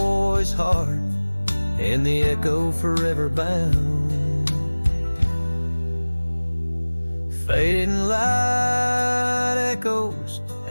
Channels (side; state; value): both; inverted; correlation -1.00